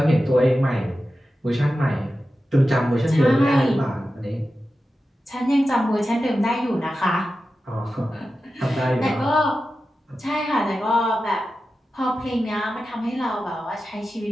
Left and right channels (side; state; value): both; normal; correlation 0.92